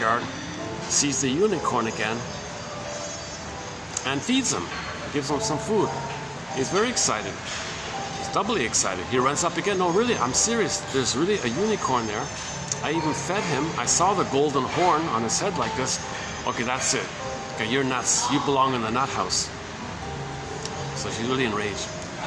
sees the unicorn again, and feeds him. Gives him some food. He's very excited. He's doubly excited. He runs up again. No, really, I'm serious. There's really a unicorn there. I even fed him. I saw the golden horn on his head like this. Okay, that's it. Okay, you're nuts. You belong in the nut house. So she's really enraged.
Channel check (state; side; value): identical; both; correlation 1.00